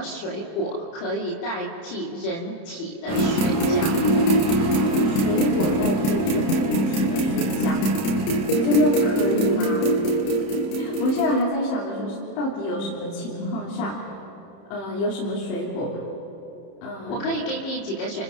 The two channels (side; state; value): right; late; 30 ms